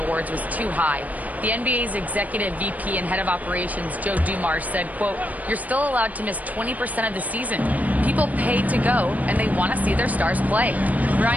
awards was too high. The NBA's executive VP and head of operations, Joe Dumars, said, quote, "You're still allowed to miss 20% of the season. People pay to go, and they want to see their stars play."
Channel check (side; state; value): left; late; 0.075 ms